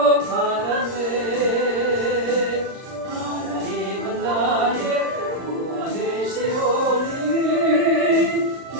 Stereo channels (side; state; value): left; late; 39 ms